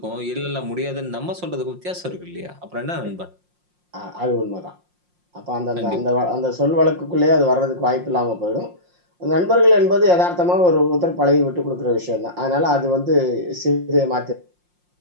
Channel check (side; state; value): left; late; 5.6 ms